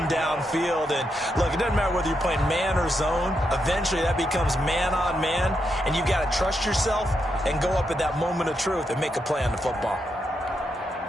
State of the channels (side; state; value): both; normal; correlation 0.82